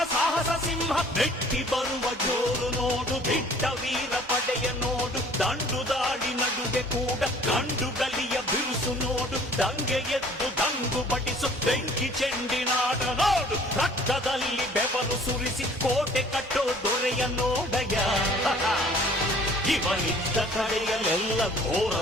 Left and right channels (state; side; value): normal; both; correlation 0.53